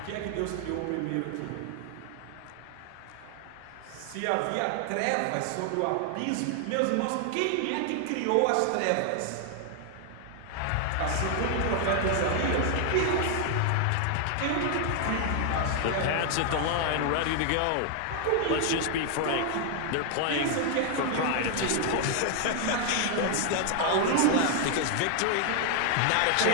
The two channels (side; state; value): both; different; correlation 0.00